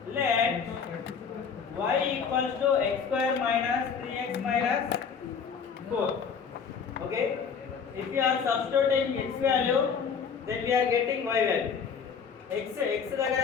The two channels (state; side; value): quieter; right; 6.3 dB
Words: let y equals to x square minus 3x minus 4. Okay, if we are substituting x value, then we are getting y value. x దగ్గర